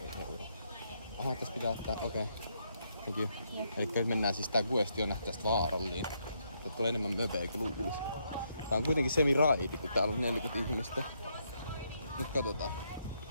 Aha, tässä pitää ottaa, okei. Thank you. Eli nyt mennään siis tää questi on tästä vaaralliin. Tää tulee enemmän möpeä kuin luulis. Tää on kuitenkin semi-raidi, kun täällä on 40 ihmistä. Mut katsotaan.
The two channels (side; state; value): both; inverted; correlation -0.76